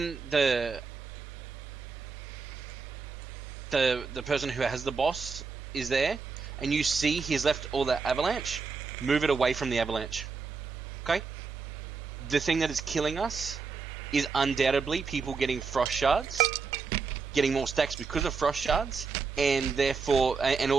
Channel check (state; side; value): quieter; left; 4.9 dB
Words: the person who has the boss is there, and you see he's left all the avalanche, move it away from the avalanche. Okay? The thing that is killing us is undoubtedly people getting frost shards, getting more stacks because of frost shards, and therefore, and